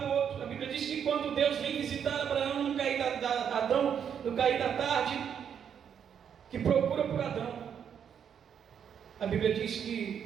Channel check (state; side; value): quieter; left; 8.1 dB